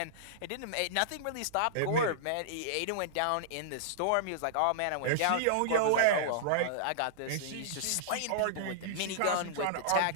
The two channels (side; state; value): both; different; correlation -0.02